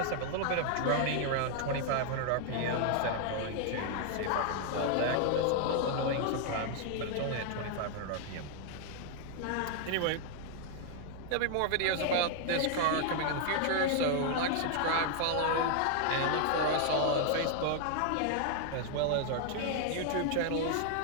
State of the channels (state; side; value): different; both; correlation 0.00